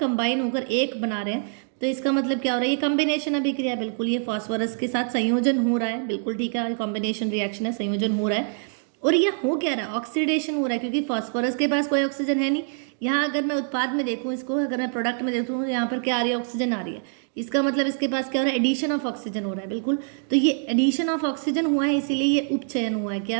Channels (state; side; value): silent; left; 62 dB below the other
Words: होकर एक बना रहे हैं, तो इसका मतलब क्या हो रहा है, ये कॉम्बिनेशन अभिक्रिया, बिल्कुल ये फास्फोरस के साथ संयोजन हो रहा है, बिल्कुल ठीक है, कॉम्बिनेशन रिएक्शन है, संयोजन हो रहा है। और यह हो क्या रहा है, ऑक्सीडेशन हो रहा है, क्योंकि फास्फोरस के पास कोई ऑक्सीजन है नहीं। यहाँ अगर मैं उत्पाद में देखूँ इसको, अगर मैं प्रोडक्ट में देखूँ, यहाँ पर क्या आ रही है, ऑक्सीजन आ रही है। इसका मतलब इसके पास क्या हो रहा है, एडिशन ऑफ ऑक्सीजन हो रहा है, बिल्कुल। तो ये एडिशन ऑफ ऑक्सीजन हुआ है, इसीलिए ये उपचयन हुआ है।